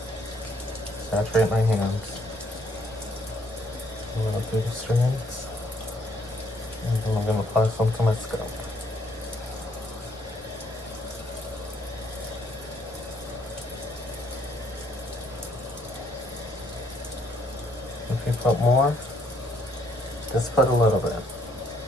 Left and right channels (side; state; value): both; normal; correlation 0.68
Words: Saturate my hands. I'm going to do the strands, and then I'm going to apply some to my scalp. If you put more, just put a little bit.